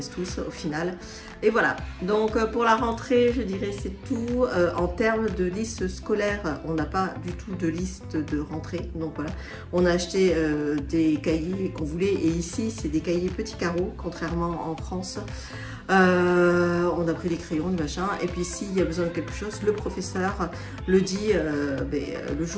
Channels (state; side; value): identical; both; correlation 1.00